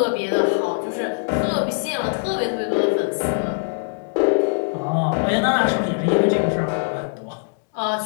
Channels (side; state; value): right; silent; digital silence